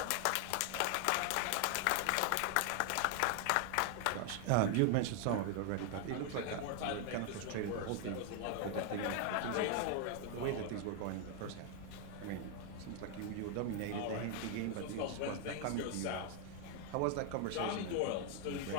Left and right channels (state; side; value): different; both; correlation 0.01